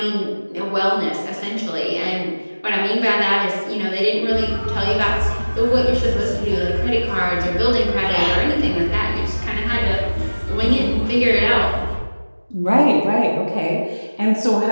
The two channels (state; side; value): inverted; both; correlation -1.00